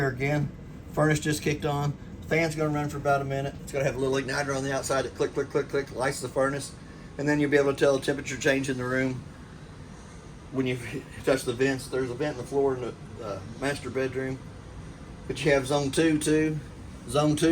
again, furnace just kicked on. Fan's gonna run for about a minute. It's gonna have a little igniter on the outside that click, click, click, click, lights the furnace. And then you'll be able to tell the temperature change in the room when you touch the vents. There's a vent in the floor in the master bedroom. But you have zone 2 too. Zone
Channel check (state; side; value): identical; both; correlation 1.00